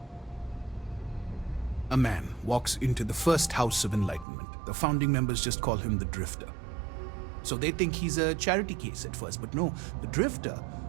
A man walks into the first House of Enlightenment. The founding members just call him the Drifter. So they think he's a charity case at first, but no, the Drifter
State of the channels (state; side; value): drops out; left; at 4.2 s